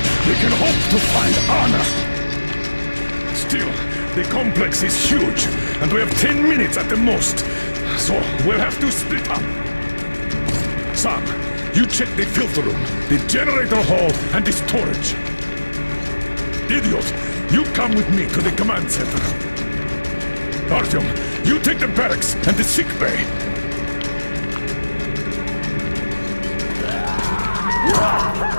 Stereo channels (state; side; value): inverted; both; correlation -1.00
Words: we can hope to find Anna. Still, the complex is huge, and we have 10 minutes at the most. So, we'll have to split up. Sam, you check the filter room, the generator hall, and the storage. Idiot, you come with me to the command center. Artyom, you take the barracks and the sick bay.